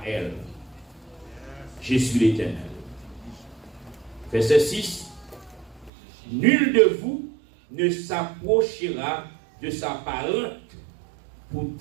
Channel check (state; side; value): drops out; left; at 5.9 s